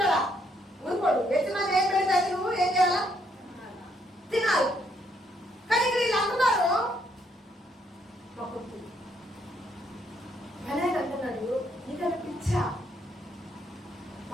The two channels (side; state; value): both; normal; correlation 0.72